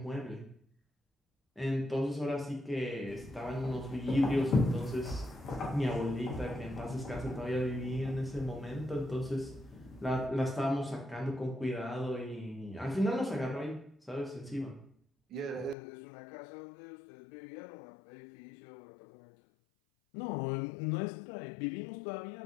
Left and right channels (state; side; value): drops out; right; at 15.8 s